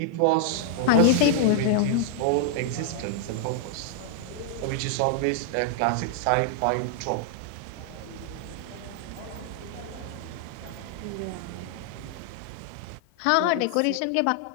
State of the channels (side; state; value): both; different; correlation 0.00